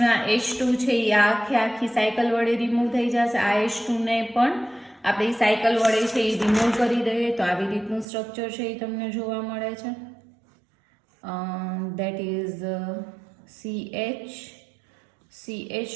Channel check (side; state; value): left; drops out; at 8.1 s